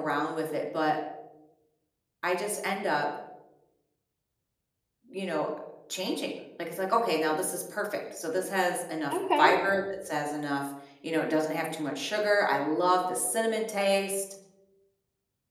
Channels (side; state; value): both; identical; correlation 1.00